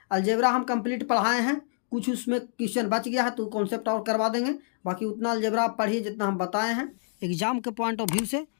अलजेब्रा हम कंप्लीट पढ़ाए हैं, कुछ उसमें क्वेश्चन बच गया है तो कॉन्सेप्ट और करवा देंगे। बाकी उतना अलजेब्रा आप पढ़िए जितना हम बताए हैं, एग्जाम के पॉइंट ऑफ व्यू से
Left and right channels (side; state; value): right; silent; digital silence